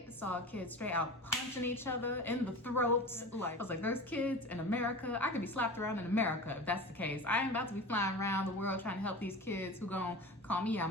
saw kids straight out punching each other in the throats. I was like, there's kids in America. I could be slapped around in America if that's the case. I ain't about to be flying around the world trying to help these kids who gonna call me out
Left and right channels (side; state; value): both; normal; correlation 0.32